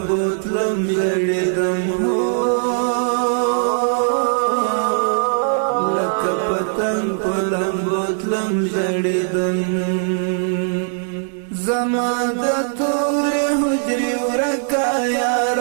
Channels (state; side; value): silent; left; digital silence